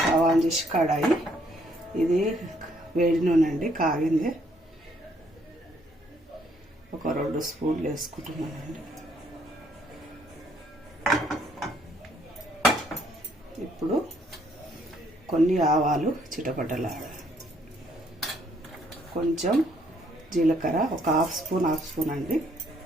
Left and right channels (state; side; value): normal; both; correlation 0.68